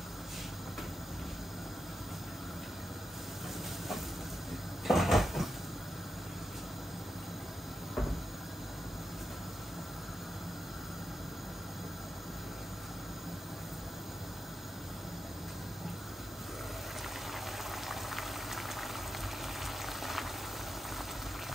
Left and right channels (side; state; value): both; normal; correlation 0.87